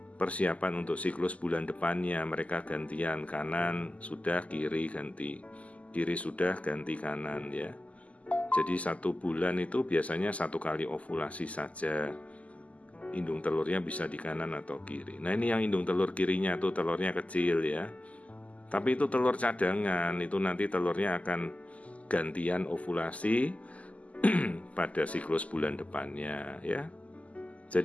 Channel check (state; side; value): late; right; 0.069 ms